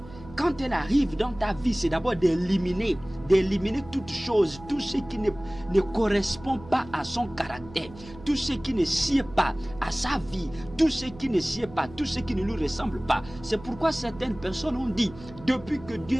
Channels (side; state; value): right; noise; hum, 18 dB below the sound